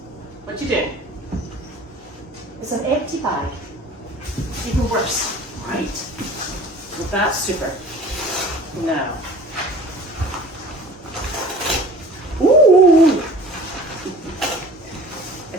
What you doing? It's an empty bag. Even worse. Right. So that's super. Now. Ooh! I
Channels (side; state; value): both; normal; correlation 0.44